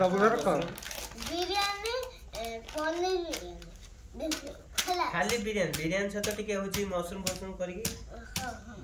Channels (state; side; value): identical; both; correlation 1.00